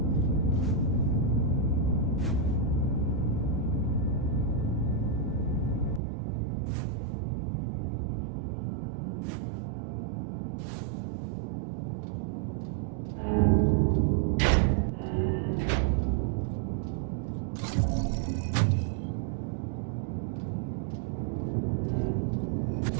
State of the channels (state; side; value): drops out; left; at 6.0 s